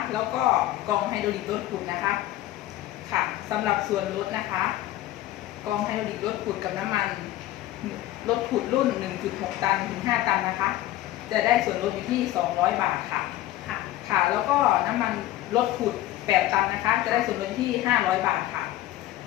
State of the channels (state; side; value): quieter; right; 14.8 dB